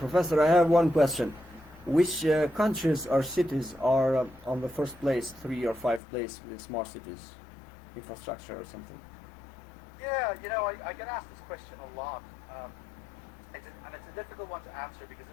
I have one question. Which countries or cities are on the first place, 3 or 5 place with smart cities infrastructure or something? Yeah, I get asked this question a lot, and it's a difficult one to answer because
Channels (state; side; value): drops out; right; at 6.0 s